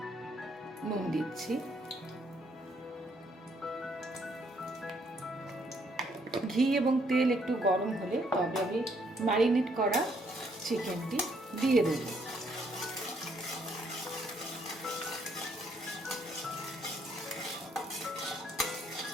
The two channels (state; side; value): normal; both; correlation 0.69